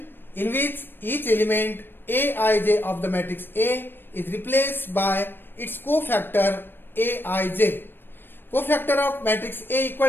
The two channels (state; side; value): late; right; 0.097 ms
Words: in which each element Aij of the matrix A is replaced by its cofactor Aij. Cofactor of matrix A